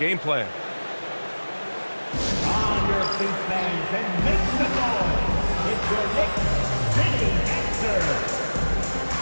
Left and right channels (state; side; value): inverted; both; correlation -1.00